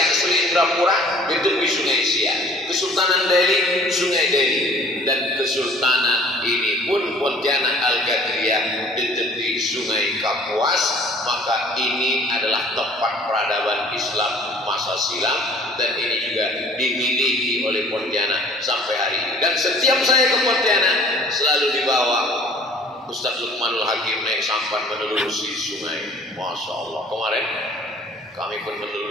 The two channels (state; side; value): normal; both; correlation 0.51